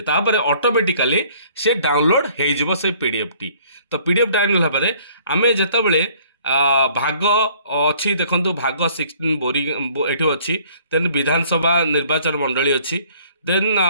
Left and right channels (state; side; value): inverted; both; correlation -0.57